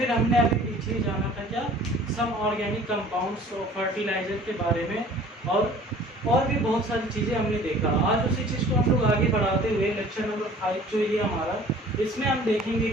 हमने अभी पीछे जाना था क्या सम ऑर्गेनिक कंपाउंड्स और फर्टिलाइजर के बारे में, और भी बहुत सारी चीज़ें हमने देखा। आज उसी चीज़ को हम लोग आगे बढ़ाते हुए लेक्चर नंबर 5 जो ये हमारा, इसमें हम देखेंगे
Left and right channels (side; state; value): both; normal; correlation 0.49